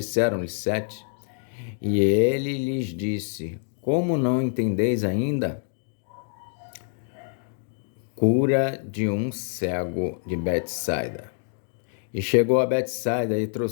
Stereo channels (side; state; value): right; silent; digital silence